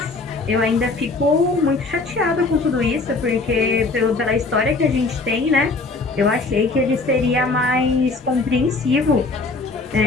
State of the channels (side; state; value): right; quieter; 3.6 dB